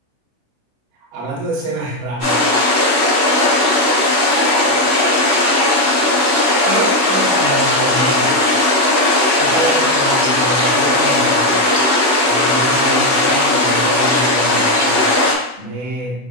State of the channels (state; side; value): late; left; 16 ms